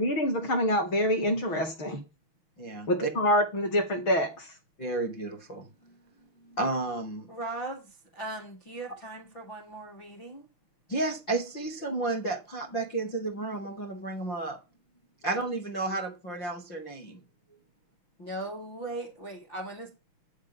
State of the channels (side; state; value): right; late; 6.2 ms